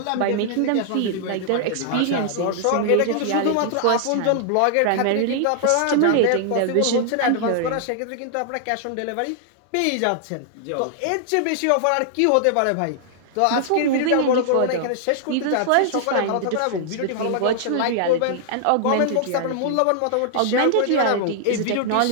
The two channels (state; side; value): different; both; correlation -0.01